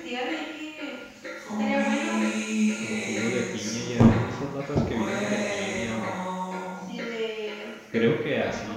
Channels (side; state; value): both; identical; correlation 1.00